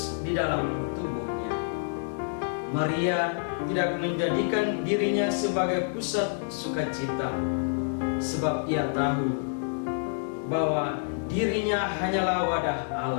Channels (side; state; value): right; silent; digital silence